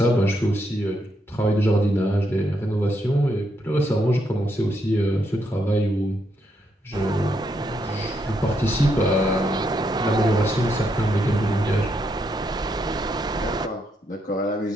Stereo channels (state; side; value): normal; both; correlation 0.78